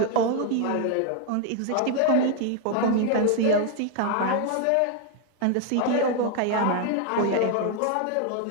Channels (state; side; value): different; both; correlation 0.01